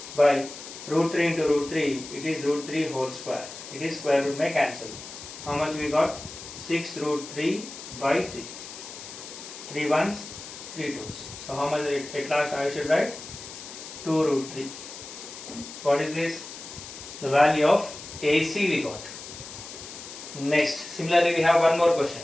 by root 3 into root 3, it is root 3 whole square. It is square root may cancel. How much we got? 6 root 3 by 3. 3 ones, 3 twos. So how much at last I should write? 2 root 3. What is this? The value of AC we got. Next, similarly we have one more question.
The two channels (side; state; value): left; noise; hiss, 12 dB below the sound